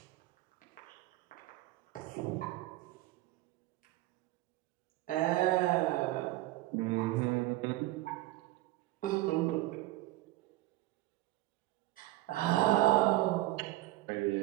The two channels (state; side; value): quieter; left; 17.1 dB